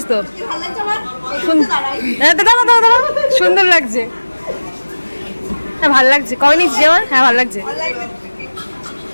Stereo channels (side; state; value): both; inverted; correlation -1.00